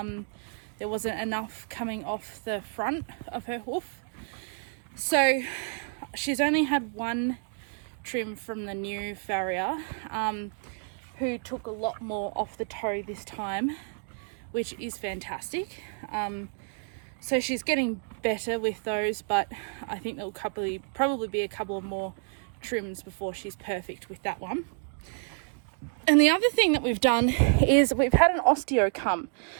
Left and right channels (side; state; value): left; silent; 58 dB below the other